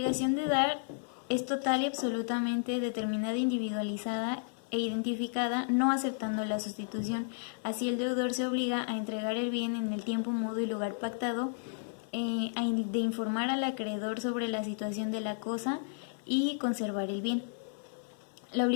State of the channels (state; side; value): silent; right; 56 dB below the other